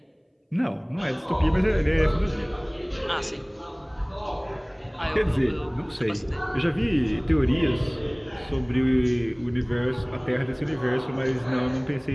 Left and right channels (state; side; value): identical; both; correlation 1.00